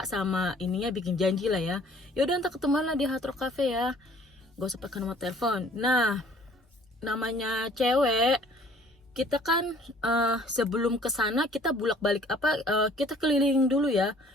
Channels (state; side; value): normal; both; correlation 0.55